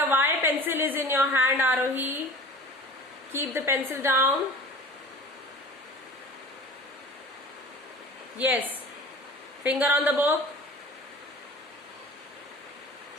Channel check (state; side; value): normal; both; correlation 0.41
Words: why pencil is in your hand, Arohi? Keep the pencil down. Yes. Finger on the book.